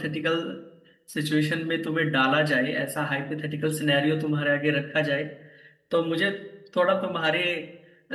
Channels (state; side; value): identical; both; correlation 1.00